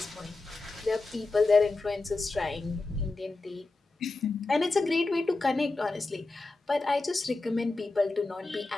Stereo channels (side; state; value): right; quieter; 3.3 dB